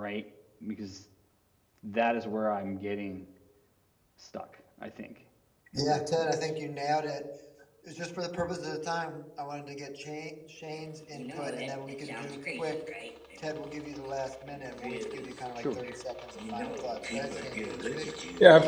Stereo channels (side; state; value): both; identical; correlation 1.00